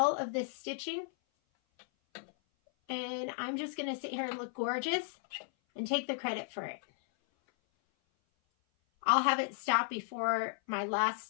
of this stitching. And I'm just going to sit here and look gorgeous and take the credit for it. I'll have it stop before my last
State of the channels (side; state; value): right; silent; 55 dB below the other